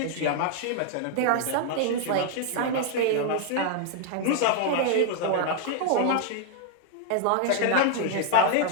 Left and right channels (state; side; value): different; both; correlation 0.00